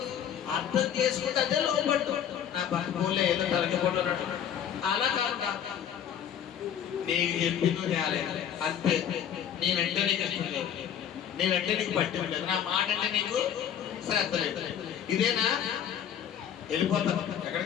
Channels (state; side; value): quieter; right; 9.2 dB